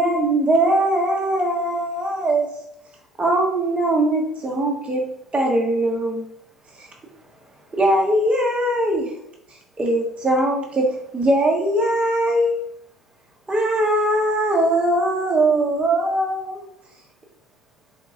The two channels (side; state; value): both; normal; correlation 0.62